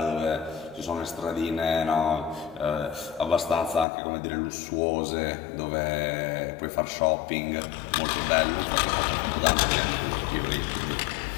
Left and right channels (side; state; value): right; drops out; at 3.9 s